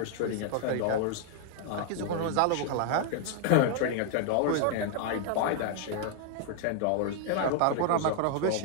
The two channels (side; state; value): both; different; correlation 0.00